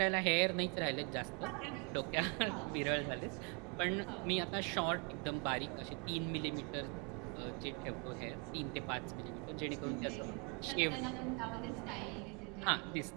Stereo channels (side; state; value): left; quieter; 34.6 dB